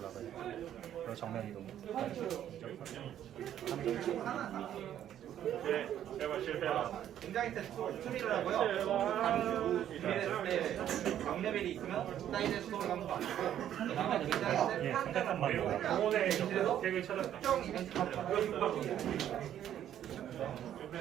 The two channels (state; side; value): quieter; left; 10.8 dB